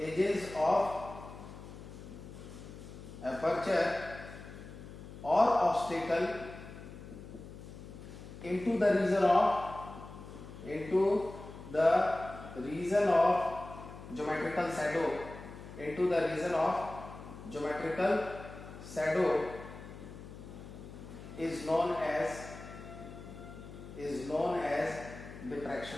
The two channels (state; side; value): noise; left; hum, 14 dB below the sound